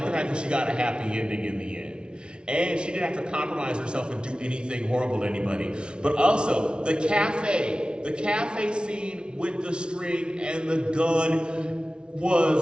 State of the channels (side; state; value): left; late; 0.056 ms